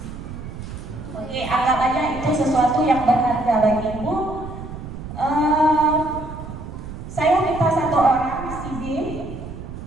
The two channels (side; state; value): right; noise; rumble, 11 dB below the sound